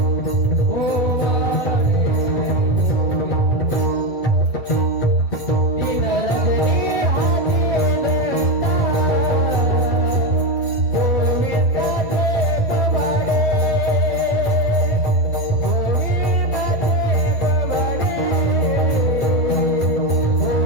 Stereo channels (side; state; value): right; late; 7.7 ms